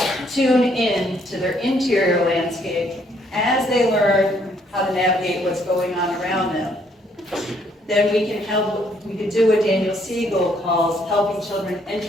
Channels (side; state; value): both; normal; correlation 0.68